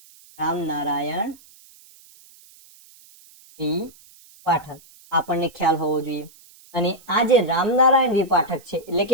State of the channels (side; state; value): right; noise; hiss, 25 dB below the sound